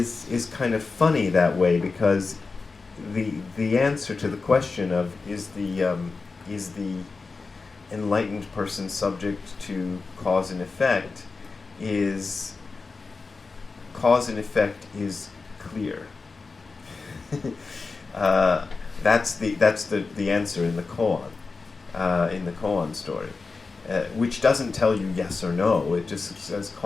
kind of funny that way, because the answer to the question of is the enlightened person subject to cause and effect is cause and effect is clear. That's the answer in the koan story. Which doesn't tell you yes or no. It just says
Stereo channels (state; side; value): quieter; right; 4.2 dB